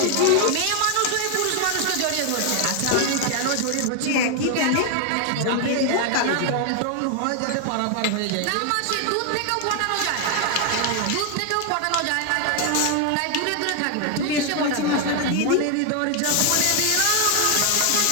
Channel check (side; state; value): both; different; correlation 0.00